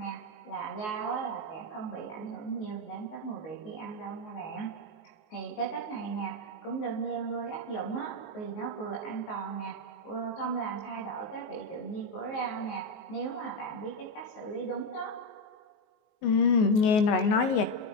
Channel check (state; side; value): late; right; 19 ms